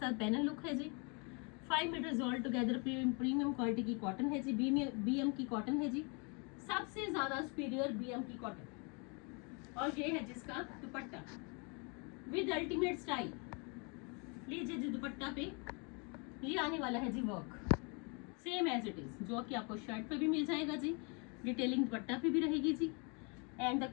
पैनल लुक है जी। 5 metres all together premium quality की कॉटन है जी, बीएम की कॉटन है जी, सबसे ज्यादा सुपीरियर बीएम की कॉटन। और ये है जिसका दुपट्टा विद अल्टीमेट स्टाइल। लीजिए जी दुपट्टा पे ये आने वाला है जी work same as it is, जो कि आपको शर्ट पे भी मिल जाएगा जी, डिटेलिंग दुपट्टा पे भी रहेगी जी। And the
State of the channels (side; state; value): right; quieter; 33.8 dB